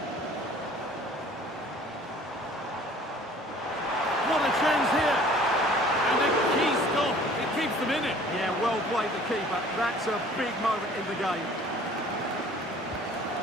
What a chance here. And a key stop. It keeps them in it. Yeah, well played the keeper. That's a big moment in the game.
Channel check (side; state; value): both; normal; correlation 0.51